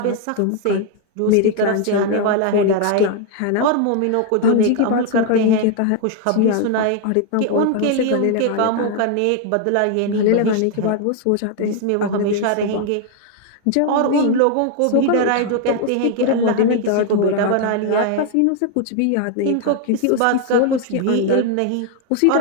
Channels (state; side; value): different; both; correlation 0.00